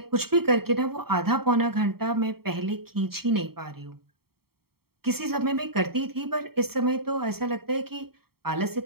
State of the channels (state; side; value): late; left; 0.95 ms